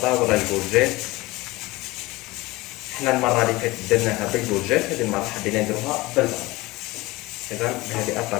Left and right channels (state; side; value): quieter; right; 20.7 dB